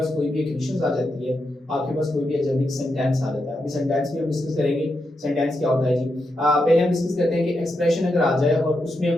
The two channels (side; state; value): both; normal; correlation 0.85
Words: कोई भी इक्वेशंस आ जाती है, आपके पास कोई भी अलजेब्रिक सेंटेंस आ जाता है। अभी सेंटेंस भी हम डिस्कस करेंगे। सेंटेंस क्या होता है जी, पहले हम डिस्कस करते हैं कि एक्सप्रेशन अगर आ जाए और उसमें